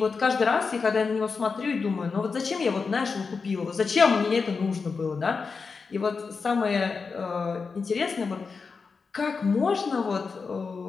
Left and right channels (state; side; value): quieter; right; 4.9 dB